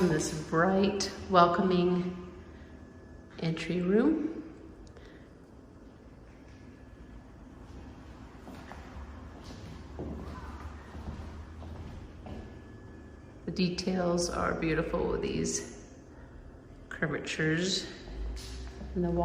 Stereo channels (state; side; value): identical; both; correlation 1.00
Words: and this bright, welcoming entry room. The details are beautiful with these curvatures in the